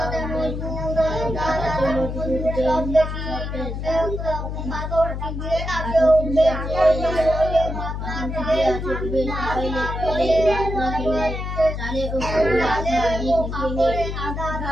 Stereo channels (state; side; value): noise; left; hum, 5 dB below the sound